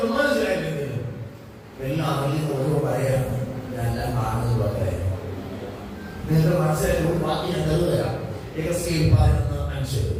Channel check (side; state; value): both; identical; correlation 1.00